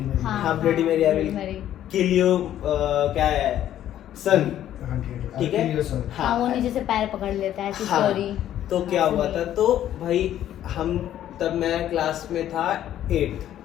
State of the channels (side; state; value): right; quieter; 11.7 dB